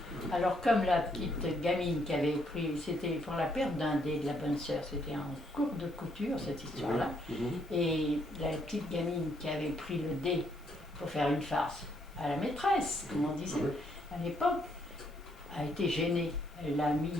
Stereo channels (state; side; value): normal; both; correlation 0.72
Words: Alors, comme la petite gamine qui avait pris, c'était pour la perte d'un dé de la bonne sœur, c'était en cours de couture cette histoire-là. Et la petite gamine qui avait pris le dé pour faire une farce à la maîtresse, comme on disait à l'époque, a été gênée. Elle l'a mis